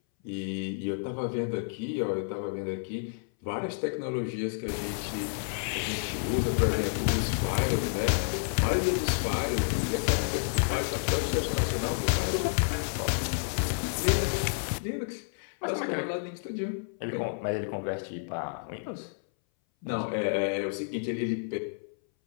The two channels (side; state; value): right; silent; 58 dB below the other